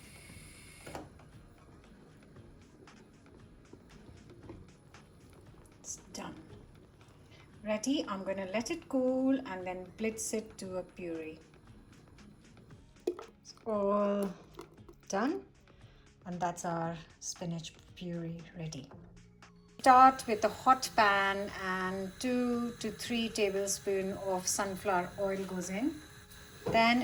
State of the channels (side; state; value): both; identical; correlation 1.00